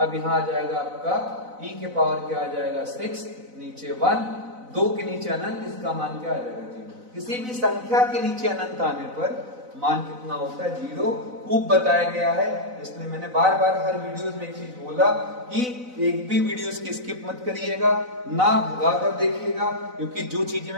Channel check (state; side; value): late; left; 4.0 ms